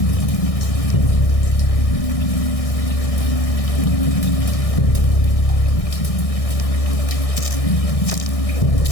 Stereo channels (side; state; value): right; late; 1.6 ms